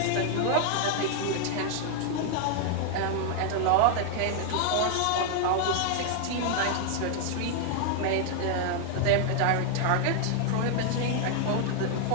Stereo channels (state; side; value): different; both; correlation 0.00